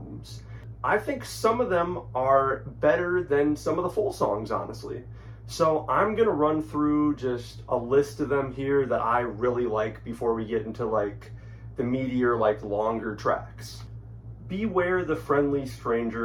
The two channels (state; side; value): identical; both; correlation 1.00